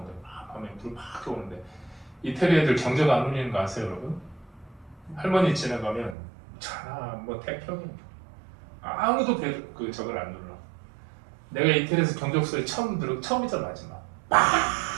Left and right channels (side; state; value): left; drops out; at 6.2 s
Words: 밤에 불 막 들어오는데 이태리 애들 경적 안 울리는 거 아세요 여러분? 할머니 지나가면 차나 뭐 태평이 아무도 그 저걸 안 눌러 내가 이태리에서 경적 소리 처음이자 마지막